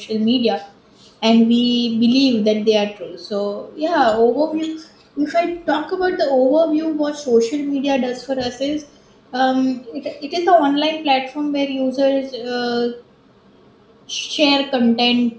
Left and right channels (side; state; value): both; identical; correlation 1.00